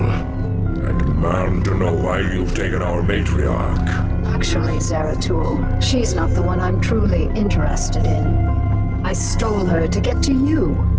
I demand to know why you've taken our matriarch. Actually, Zeratul, she's not the one I'm truly interested in. I stole her to get to you.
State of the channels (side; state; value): both; identical; correlation 1.00